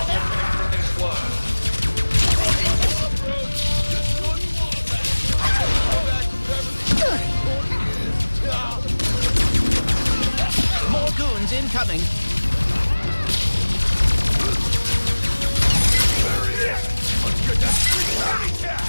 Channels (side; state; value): both; inverted; correlation -1.00